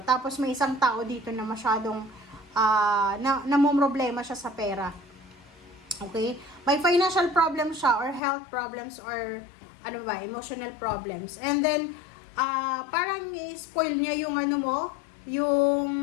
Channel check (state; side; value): drops out; right; at 8.2 s